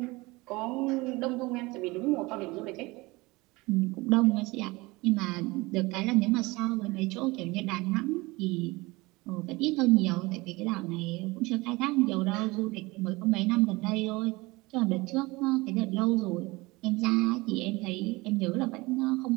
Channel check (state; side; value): quieter; left; 22.7 dB